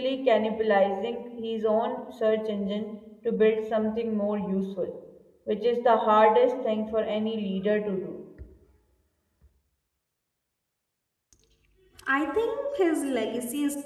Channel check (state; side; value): identical; both; correlation 1.00